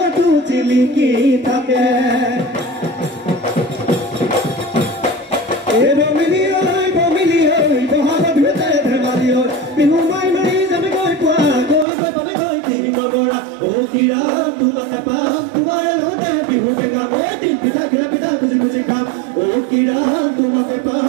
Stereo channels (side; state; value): left; drops out; at 11.9 s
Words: থাকে বিহু মাই মাৰি যাবে গৈ পোৱা গৈ গৈ পালে গৈ তিৰি নগৰা অ কিৰাম তোমাকে পাম তোমাৰ লগতে বিহুকে গাম দিন পিঠা খুজি খুজি খাম অ কিৰাম তোমাকে